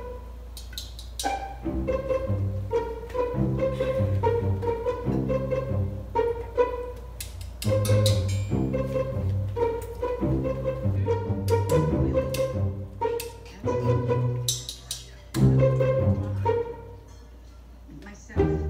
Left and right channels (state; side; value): identical; both; correlation 1.00